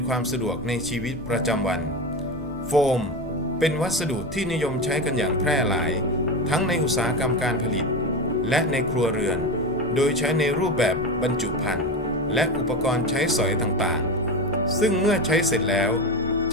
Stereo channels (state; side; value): normal; both; correlation 0.21